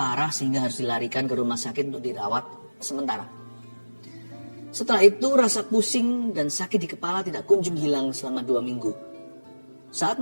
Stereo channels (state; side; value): inverted; both; correlation -1.00